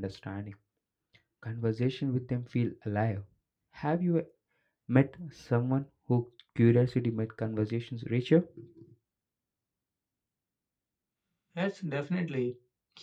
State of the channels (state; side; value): identical; both; correlation 1.00